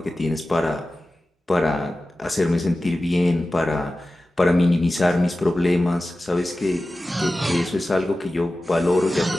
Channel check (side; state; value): both; normal; correlation 0.95